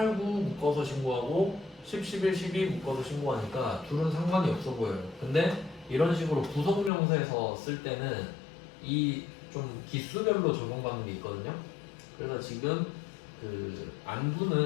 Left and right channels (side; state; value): right; drops out; at 6.9 s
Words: 9 묶어서 신고하고 10, 11, 12 묶어서 신고하니까 둘은 상관이 없어 보여요. 근데 이런 식으로 부속명세에서 쓸 때는 이 좀 기수별로 적용받는 게 있거든요. 그래서 지금 그